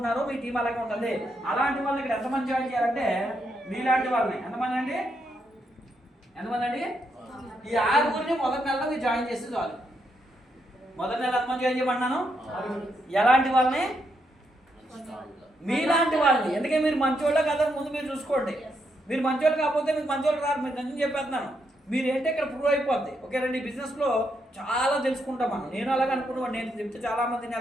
మీ టీం అలాగే ఉంటుంది. అలాంటి వాళ్ళని ఇక్కడ ఎంతమంది జాయిన్ చేయాలంటే మీలాంటి వాళ్ళని ఎంతమంది అండి ఈ 6గురిని మొదటి నెలలో మీరు జాయిన్ చేస్తే చాలు. మొదటి నెల ఎంతమంది జాయిన్ చేయమన్నాను, ఎలాంటి వాళ్ళని మీలాంటి వాళ్ళని, ఎందుకంటే మీరు మంచోళ్ళ కదా ముందు మీరు చూసుకోండి. మీరు మంచోళ్ళు కాకపోతే మీకు మంచోళ్ళు రారు, మీరు నిజం చెప్పేస్తున్నాను. మీరు ఏంటంటే ఇక్కడ ప్రూవ్ అయిపోద్ది. ఓకేనండి, ఈ బిజినెస్లో చాలా తెలుసుకుంటాం మనం. నేను అలాగే అనుకున్నాను, నేను చెప్తే చాలామంది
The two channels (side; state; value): both; normal; correlation 0.79